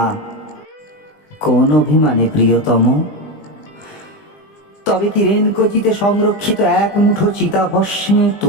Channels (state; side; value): late; right; 20 ms